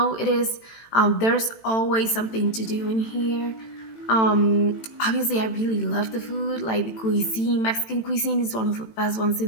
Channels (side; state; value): right; late; 18 ms